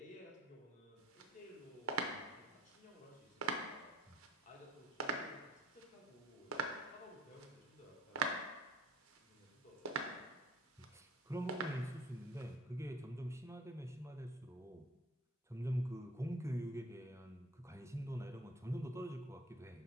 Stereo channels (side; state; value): both; normal; correlation 0.48